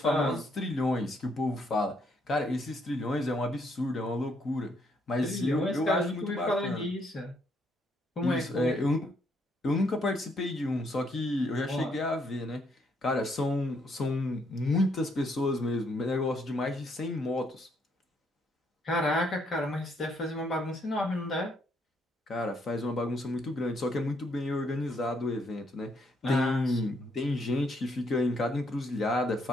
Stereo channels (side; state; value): both; normal; correlation 0.72